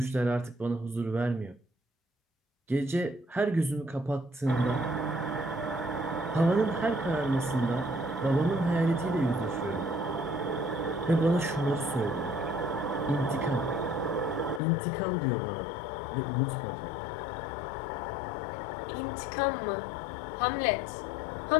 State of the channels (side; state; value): right; drops out; at 14.6 s